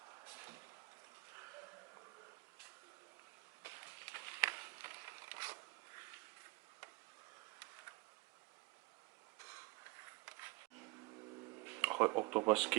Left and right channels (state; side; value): quieter; left; 23.6 dB